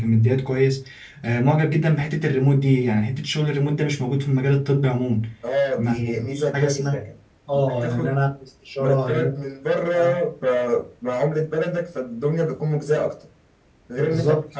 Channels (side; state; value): both; identical; correlation 1.00